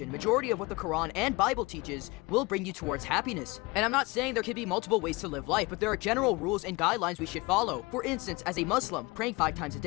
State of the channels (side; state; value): right; quieter; 24.5 dB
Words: majority of what the Quran and Bible teaches will bring you towards happiness. And I'm not saying there could be multiple ways to live life, but there are general rules and guidelines we should follow. For instance, as a Muslim, praying 5 times a